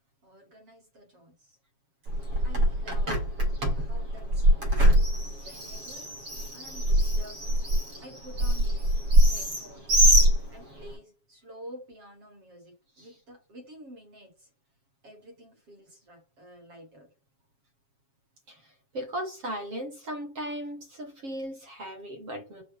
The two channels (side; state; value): left; late; 7.3 ms